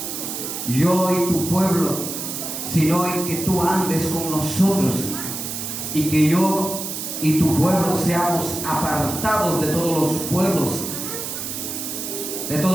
yo y tu pueblo, sino en que tú andes con nosotros, y que yo y tu pueblo seamos apartados de todos los pueblos,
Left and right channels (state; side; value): noise; right; hiss, 5 dB below the sound